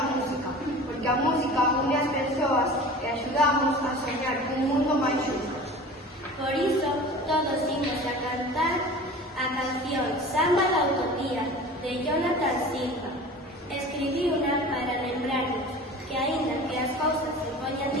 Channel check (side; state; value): both; normal; correlation 0.39